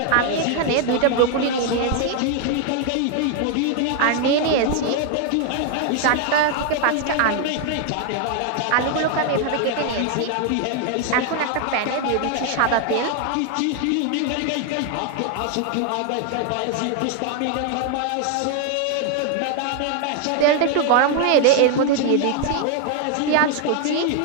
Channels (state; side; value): different; both; correlation 0.00